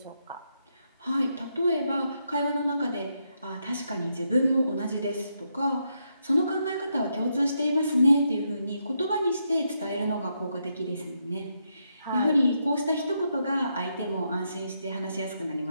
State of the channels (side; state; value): both; inverted; correlation -0.80